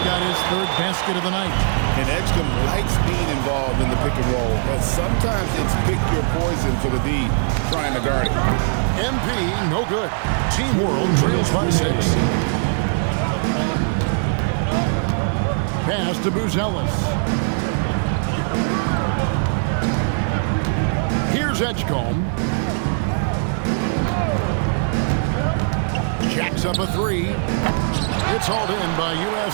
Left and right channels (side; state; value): left; silent; digital silence